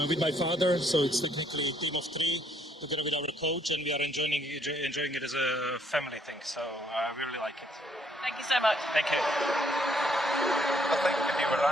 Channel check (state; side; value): normal; both; correlation 0.69